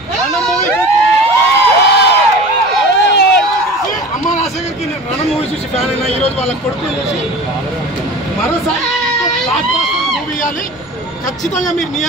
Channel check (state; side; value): noise; right; rumble, 26 dB below the sound